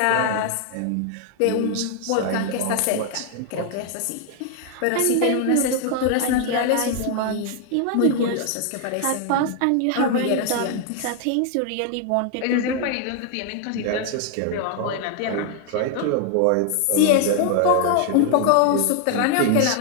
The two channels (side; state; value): both; different; correlation 0.00